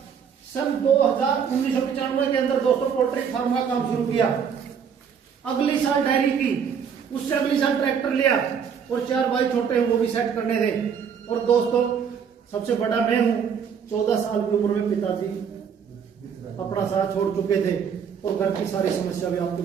सन 1995 के अंदर दोस्तों पोल्ट्री फार्म का काम शुरू किया। अगली साल डेयरी की, उससे अगली साल ट्रैक्टर लिया और 4 भाई छोटे हैं वो भी सेट करने थे। और दोस्तों सबसे बड़ा मैं हूं, 14 साल की उम्र में पिताजी अपना साथ छोड़ चुके थे और घर की सारी समस्या भी आपके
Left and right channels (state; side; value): quieter; left; 7.2 dB